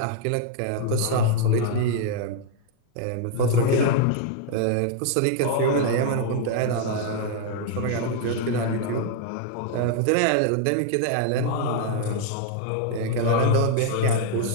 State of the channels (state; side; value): different; both; correlation 0.00